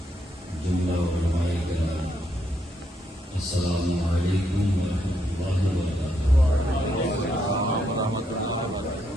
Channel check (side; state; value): both; normal; correlation 0.77